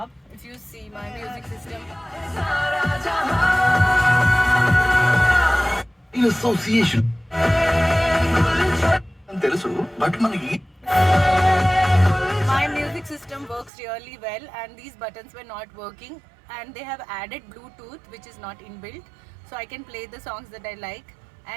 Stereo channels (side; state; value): left; drops out; at 13.7 s